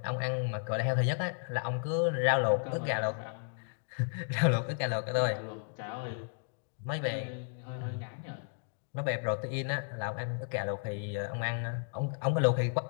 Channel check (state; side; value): silent; right; 55 dB below the other